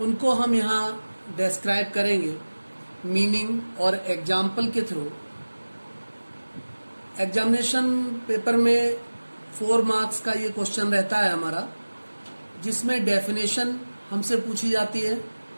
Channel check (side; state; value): both; inverted; correlation -1.00